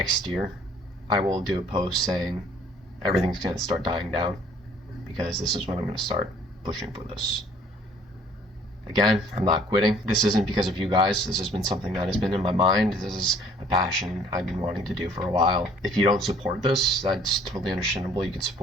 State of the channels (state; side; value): normal; both; correlation 0.57